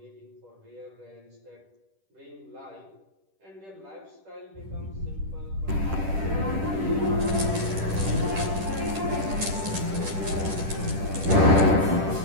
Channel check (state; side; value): late; left; 10 ms